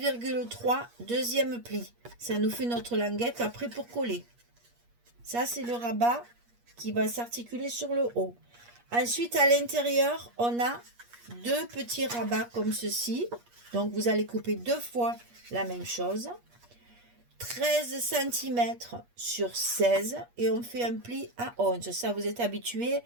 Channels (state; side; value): late; left; 8.4 ms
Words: deuxième pli. Ça nous fait notre languette après pour coller. Ça, c'est le rabat qui va s'articuler sur le haut. Ensuite, à l'intérieur, on a deux petits rabats comme ceci. Donc, vous allez couper 2 fois la même chose. 13 cm sur 16 et on fait un pli à 11. Ça, vous êtes habitué,